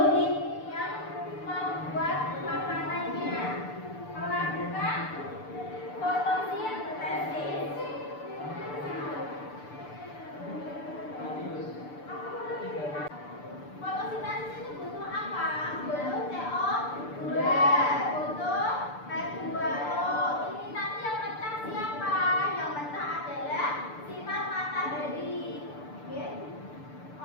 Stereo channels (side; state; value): right; late; 6.8 ms